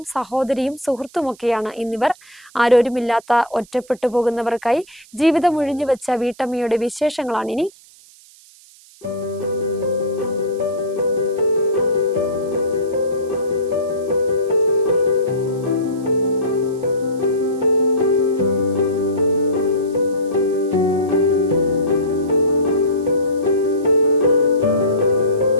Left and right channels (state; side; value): noise; right; hiss, 25 dB below the sound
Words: സഹോദരിയും സുഹൃത്തുമൊക്കെയാണ് എന്നിവർ. ആരോരുമില്ലാത്ത ഒറ്റപ്പെട്ടു പോകുന്നവർക്കായി ജീവിതം ഒഴിഞ്ഞുവെച്ച വീട്ടമ്മയുടെ വിശേഷങ്ങളാണിനി.